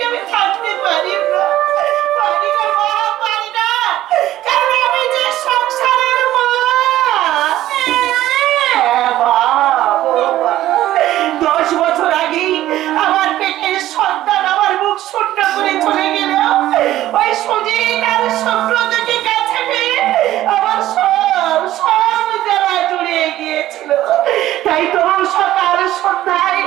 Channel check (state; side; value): quieter; left; 14.1 dB